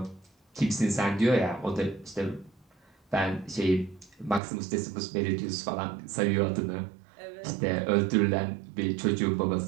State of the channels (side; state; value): left; drops out; at 4.4 s